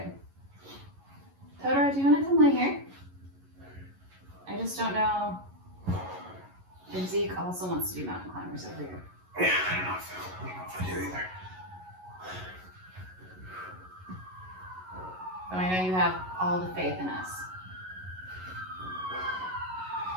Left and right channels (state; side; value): late; left; 11 ms